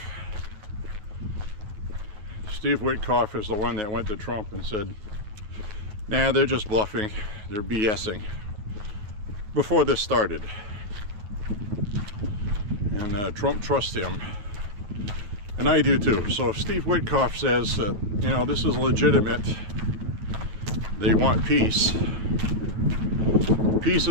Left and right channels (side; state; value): left; late; 9.5 ms